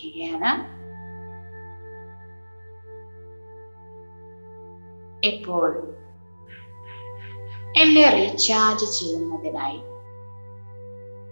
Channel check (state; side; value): inverted; both; correlation -1.00